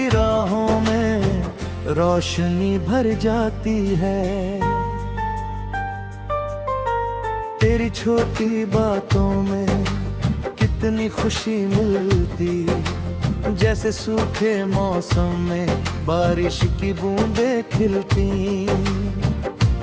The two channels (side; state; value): both; identical; correlation 1.00